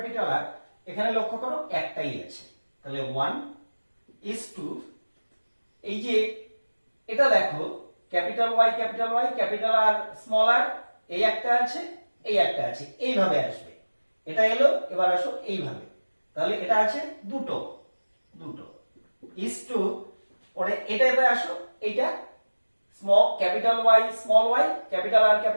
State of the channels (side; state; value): both; inverted; correlation -1.00